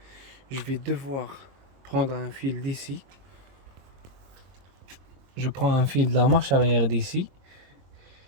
je vais devoir prendre un fil d'ici. Je prends un fil de la marche arrière d'ici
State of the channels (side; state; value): left; late; 22 ms